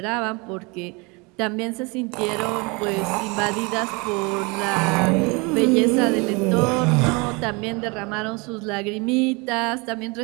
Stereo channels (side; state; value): left; quieter; 28.5 dB